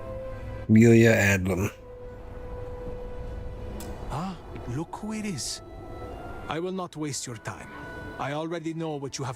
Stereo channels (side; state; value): both; identical; correlation 1.00